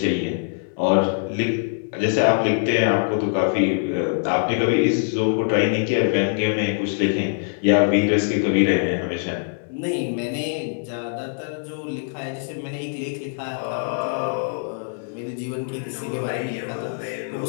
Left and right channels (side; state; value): right; silent; digital silence